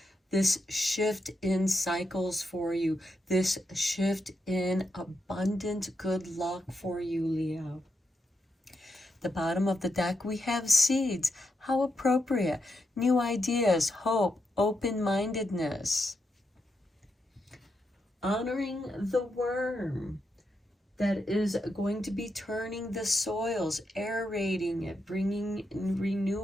this shift in cycles for you, this shift in abundant good luck for you, Leo. The bottom of the deck, we have seeds. How appropriate. New ideas, hope, open-mindedness. Honoring the worm that is going to be turning the soils, aerating it, bringing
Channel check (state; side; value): normal; both; correlation 0.84